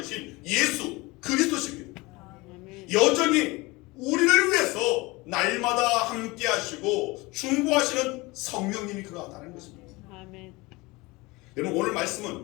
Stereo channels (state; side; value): quieter; right; 23.0 dB